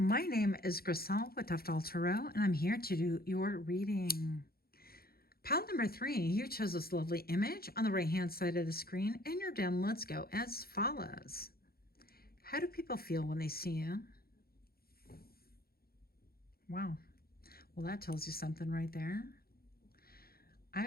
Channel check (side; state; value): right; late; 0.44 ms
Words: name is Grisel with Toughdolltarot, and I'm here to do your reading. Pile number 3, you chose this lovely image on the right hand side of the screen, and your down let's go as follows. How do people feel when they see you? Wow, well that tells you something right there. I